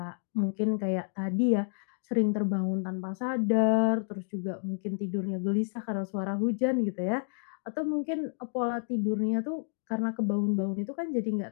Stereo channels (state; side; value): silent; right; digital silence